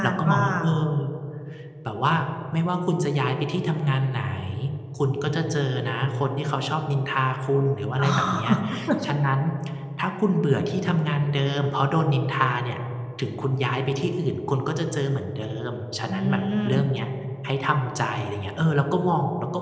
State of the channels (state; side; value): identical; both; correlation 1.00